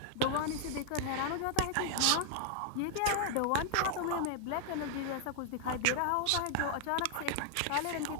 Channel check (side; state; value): both; different; correlation 0.00